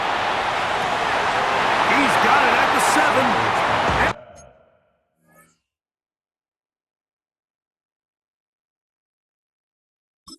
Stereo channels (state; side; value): identical; both; correlation 1.00